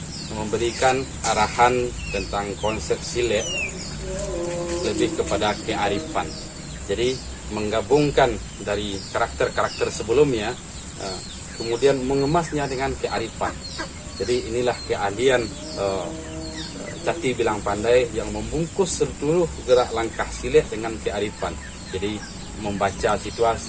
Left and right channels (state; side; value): identical; both; correlation 1.00